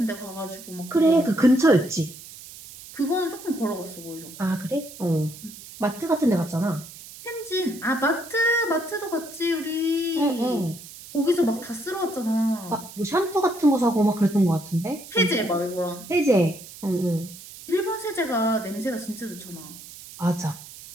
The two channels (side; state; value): right; noise; hiss, 16 dB below the sound